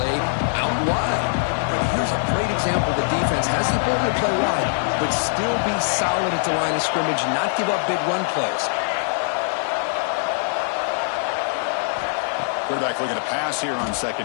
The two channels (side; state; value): right; silent; digital silence